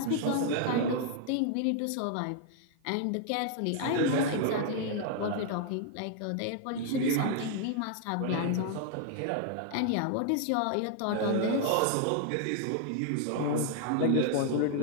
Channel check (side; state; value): both; different; correlation 0.00